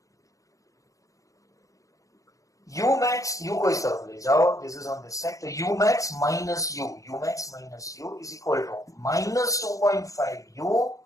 U max, u को इस तरफ ले जाओ, this is on this side. So u max minus u is equal to minus 2.5 u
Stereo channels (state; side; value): late; right; 0.16 ms